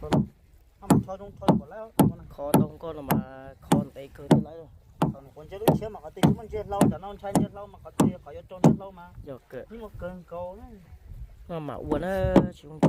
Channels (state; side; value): identical; both; correlation 1.00